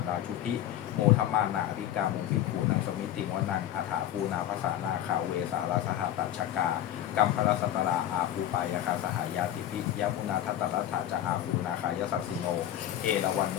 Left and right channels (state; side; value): quieter; right; 11.9 dB